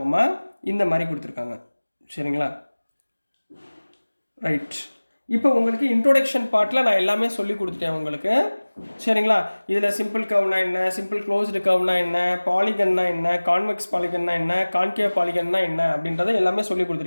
இந்த மாதிரி கொடுத்துருக்காங்க, சரிங்களா? ரைட். இப்போ உங்களுக்கு இன்ட்ரோடக்ஷன் பார்ட்டில் நான் எல்லாமே சொல்லி கொடுத்துட்டேன் உங்களுக்கு, சரிங்களா? இதில் சிம்பிள் கர்வ்னா என்ன, சிம்பிள் க்ளோஸ்டு கர்வ்னா என்ன, பாலிகன்னா என்ன, கான்வெக்ஸ் பாலிகன்னா என்ன, கான்கேவ் பாலிகன்னா என்ன அப்படின்றத எல்லாமே சொல்லி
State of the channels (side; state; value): both; inverted; correlation -1.00